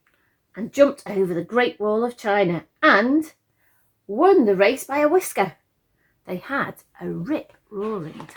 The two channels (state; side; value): identical; both; correlation 1.00